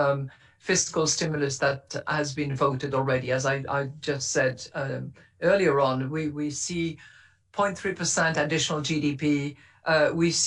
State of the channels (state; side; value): identical; both; correlation 1.00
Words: fiscal stimulus that has been voted already. As I just said earlier on, we see 0.3% additional GDP, we